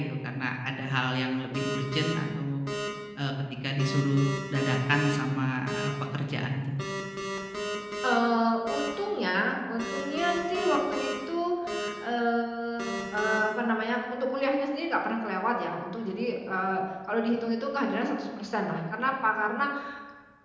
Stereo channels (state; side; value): identical; both; correlation 1.00